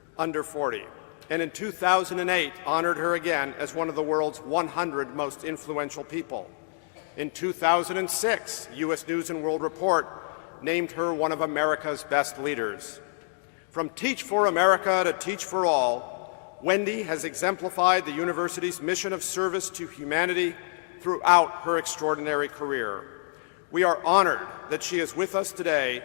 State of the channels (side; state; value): right; silent; digital silence